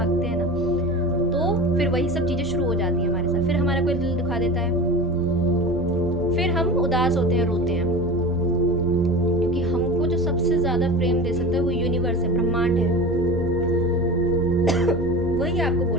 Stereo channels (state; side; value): noise; right; rumble, 15 dB below the sound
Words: हैं ना, तो फिर वही सब चीज़ें शुरू हो जाती हैं हमारे साथ। फिर हमारा कोई दिल दुखा देता है, फिर हम उदास होते हैं, रोते हैं, क्योंकि हमको जो सबसे ज़्यादा प्रेम दे सकता है वो यूनिवर्स है, ब्रह्मांड है। वही आपको